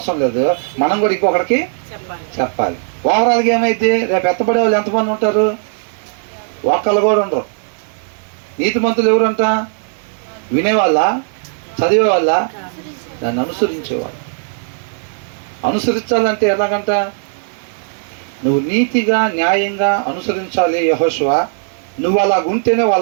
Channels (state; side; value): silent; left; digital silence